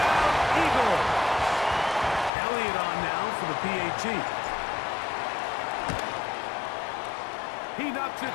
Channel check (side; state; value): right; drops out; at 2.3 s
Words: Eagles. Elliott on now for the PAT. He knocks it